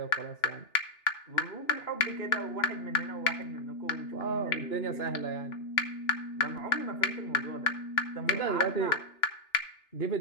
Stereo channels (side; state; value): right; late; 2.9 ms